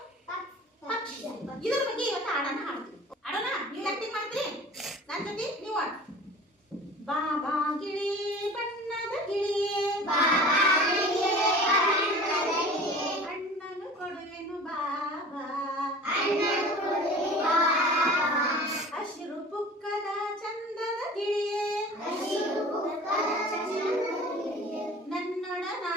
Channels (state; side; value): normal; both; correlation 0.41